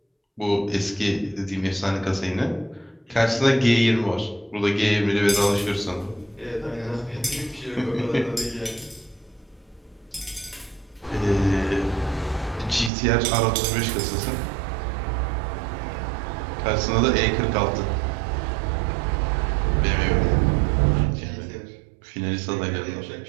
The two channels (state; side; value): drops out; left; at 12.9 s